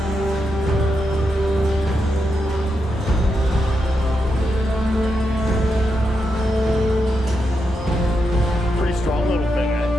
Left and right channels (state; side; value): normal; both; correlation 0.84